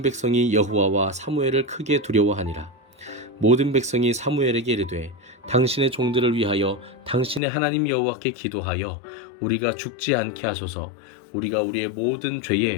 백성이 여호와와 사무엘을 크게 두려워하니라. 모든 백성이 사무엘에게 이르되 당신의 종들을 위하여 당신의 하나님 여호와께 기도하여 우리가 죽지 않게 하소서. 우리가 우리의 모든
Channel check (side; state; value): right; drops out; at 7.4 s